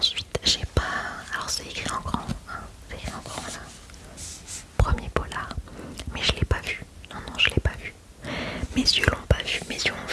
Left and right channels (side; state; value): both; identical; correlation 1.00